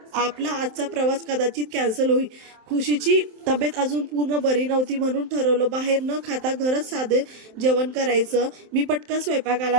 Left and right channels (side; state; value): left; late; 27 ms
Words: आपला आजचा प्रवास कदाचित कॅन्सल होईल. खुशीची तब्येत अजून पूर्ण बरी नव्हती, म्हणून ठरवलं बाहेर न खाता घरच साधे जेवण करायचं. मी पटकन